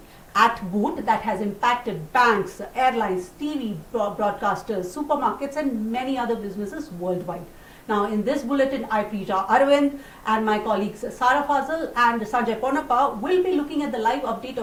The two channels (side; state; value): both; identical; correlation 1.00